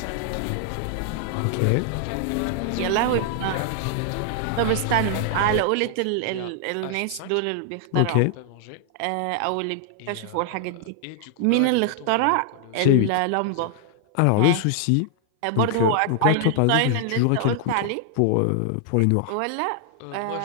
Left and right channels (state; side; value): different; both; correlation 0.00